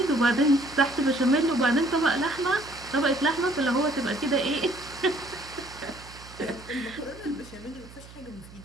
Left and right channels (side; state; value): right; noise; hum, 19 dB below the sound